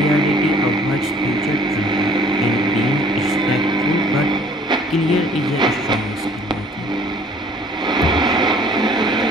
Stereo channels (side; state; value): both; normal; correlation 0.55